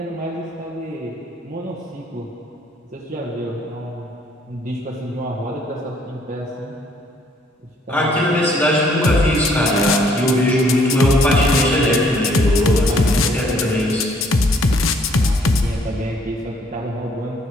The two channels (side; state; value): both; normal; correlation 0.64